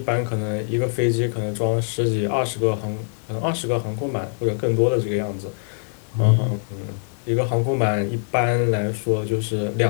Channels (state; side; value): silent; right; digital silence